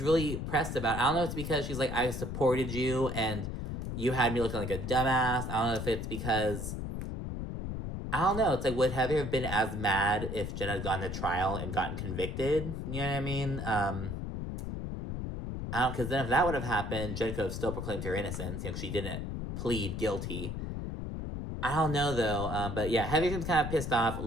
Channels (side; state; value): left; noise; rumble, 5 dB below the sound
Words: really pressed about it. I don't know if it's because she's like, I supported you and you had me looking like a dumbass. I don't know if it's because, I don't know. It's like, would Heather have been as mad if Jen had gone to trial and gotten convicted? You know what I mean? I don't, because then if that would have happened, Jen could have still proclaimed her innocence, you know, she didn't plead guilty. I don't know, though. But yeah, Heather seems kind of pissed off.